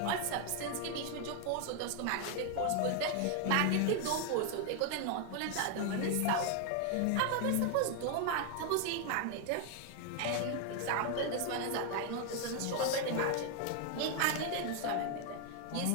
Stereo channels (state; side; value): different; both; correlation 0.00